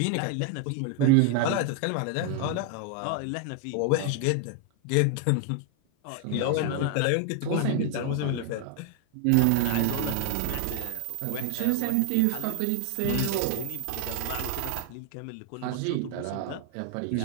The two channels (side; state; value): both; different; correlation 0.00